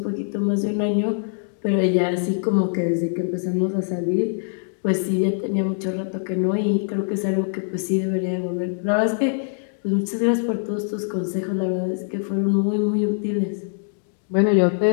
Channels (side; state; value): right; silent; digital silence